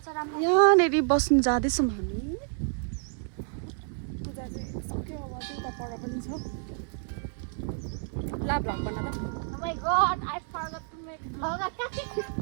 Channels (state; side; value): silent; left; 57 dB below the other